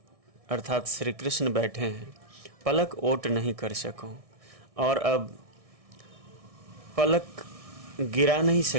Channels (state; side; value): late; left; 1.6 ms